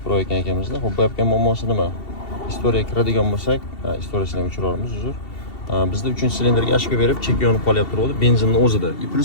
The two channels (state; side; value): late; right; 2.7 ms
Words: Pro ekan ekamizda. Xo'p, bu yapgan muammosi nima? Istoriyaga kiradigan bo'lsak, istoriyasini ham o'chiramiz, uzr. Bizda 3-silindrga ashka berib, chek yonib qolyapti turadi benzinning o'zida.